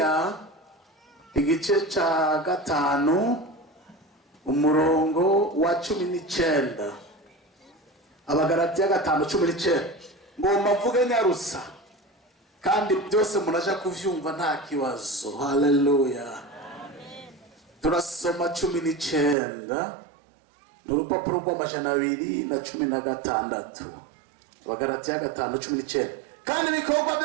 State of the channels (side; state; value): left; drops out; at 19.4 s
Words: igice ca 5 umurongo wa 19. Abagalatiya 5:19. Ngomba mvuge nyarusa kandi byose munaja kuvyumva nta kibazo. Haleluya. Turasoma 19 n'urupapuro rw'amajana 216. Abagalatiya 5:19. Kandi ibikorwa